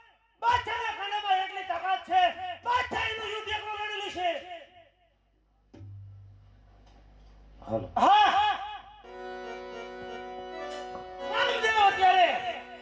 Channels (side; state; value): both; identical; correlation 1.00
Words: બાદશાહના ખાનામાં એટલી તાકાત છે બાદશાહ એનું યુદ્ધ એકલો લડેલું છે. હાલો હા હા રામદેવ અત્યારે